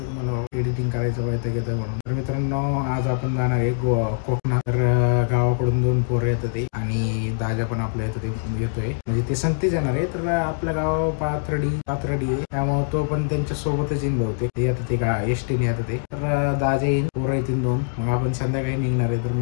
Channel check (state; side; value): silent; right; digital silence